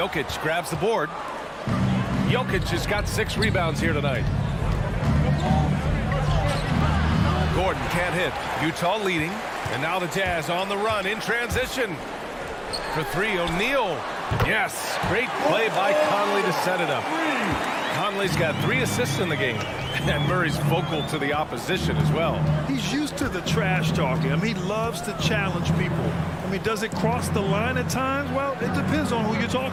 grabs the board. Jokic has got 6 rebounds here tonight. Gordon can't hit. Utah leading. And now the Jazz on the run in transition. For 3, O'Neal. Yes, great play by Conley to set it up. Conley's got 3 assists in the game. And Murray's vocal to the opposition as well. He's used to the trash talking. I mean, he loves to challenge people. I mean, does it cross the line at times? Well, it depends on who you're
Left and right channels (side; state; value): both; identical; correlation 1.00